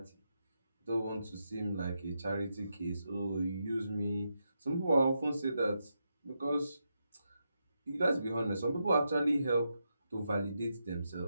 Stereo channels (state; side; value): inverted; both; correlation -0.85